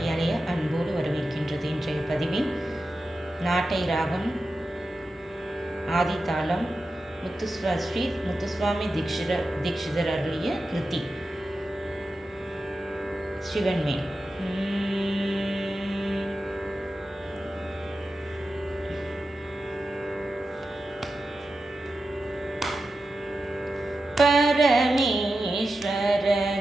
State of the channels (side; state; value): both; normal; correlation 0.91